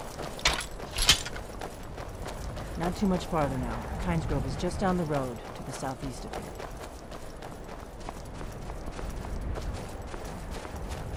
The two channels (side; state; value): both; identical; correlation 1.00